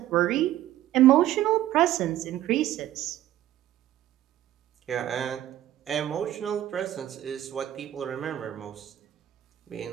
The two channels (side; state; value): left; quieter; 13.3 dB